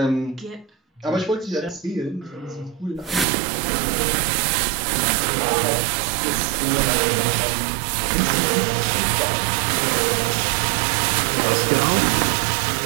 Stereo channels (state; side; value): drops out; left; at 3.2 s